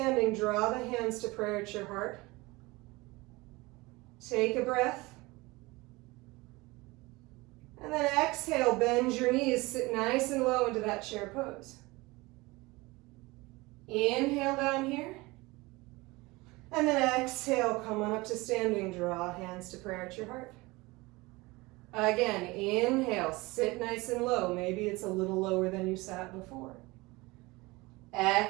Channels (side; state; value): left; quieter; 22.5 dB